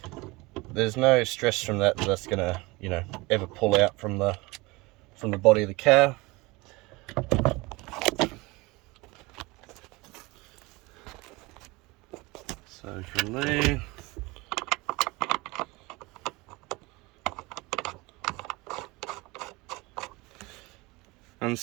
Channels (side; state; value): left; quieter; 23.4 dB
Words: there's no stress from that that's gonna, you know, ever pull out from the body of the car. So from there, and